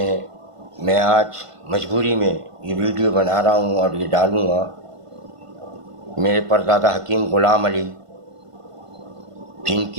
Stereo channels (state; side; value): late; left; 1.5 ms